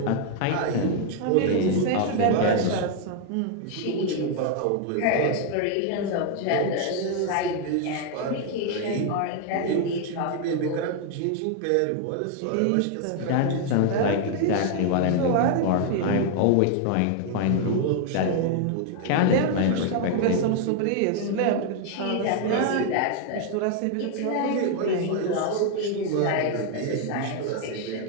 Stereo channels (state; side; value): different; both; correlation 0.00